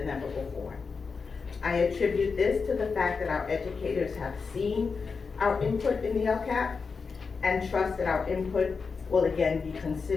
ever before. I attribute this to the fact that our educators have seen our input in the LCAP and trust that our input will again be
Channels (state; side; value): quieter; right; 5.0 dB